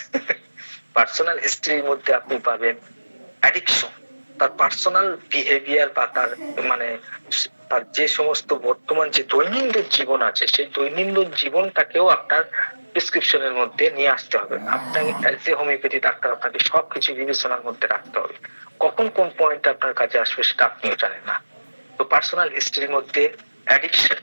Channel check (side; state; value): both; inverted; correlation -1.00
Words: পার্সোনাল হিস্ট্রির মধ্যে আপনি পাবেন অ্যাডিকশন, তার পার্সোনাল বিহেভিয়ার বা তার মানে তার যে সমস্ত বর্তমান যে দৈনন্দিন জীবন আছে, সেই দৈনন্দিন জীবনটাকেও আপনার প্রেসক্রিপশনের মধ্যে নিয়ে আসতে হবে। আপনার অ্যাজ এ হোমিওপ্যাথি ডাক্তার আপনাকে সবকিছু বিবেচনার মধ্যে রাখতে হবে। কখন কোন পয়েন্ট আপনার কাছে আসবে সেটা আপনিও জানেন না। তো পার্সোনাল হিস্ট্রির মধ্যে অ্যাডিকশন,